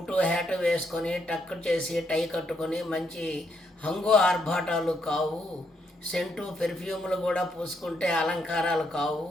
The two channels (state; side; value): normal; both; correlation 0.76